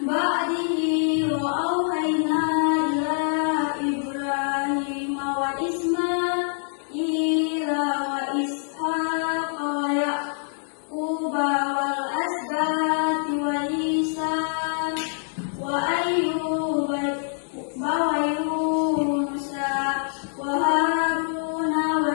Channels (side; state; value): right; silent; digital silence